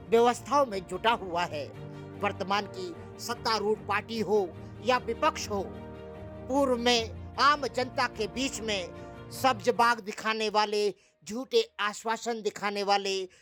व्यवस्थाओं में जुटा हुआ है। वर्तमान की सत्तारूढ़ पार्टी हो या विपक्ष हो, पूर्व में आम जनता के बीच में सब्ज बाग दिखाने वाले, झूठे आश्वासन दिखाने वाले,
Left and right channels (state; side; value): identical; both; correlation 1.00